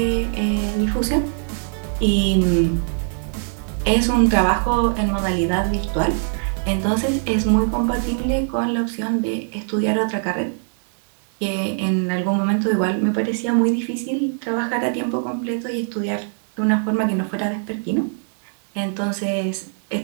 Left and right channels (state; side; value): silent; left; digital silence